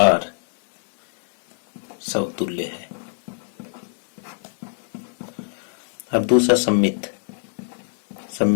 समतुल्य है। अब दूसरा सम्मित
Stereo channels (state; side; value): silent; right; digital silence